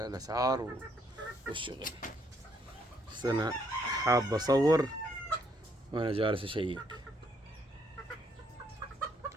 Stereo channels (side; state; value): both; normal; correlation 0.70